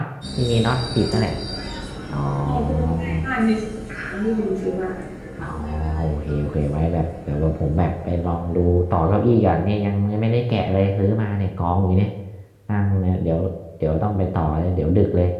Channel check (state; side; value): identical; both; correlation 1.00